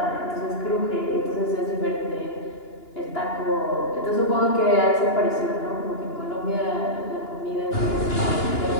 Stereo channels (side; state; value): right; late; 2.9 ms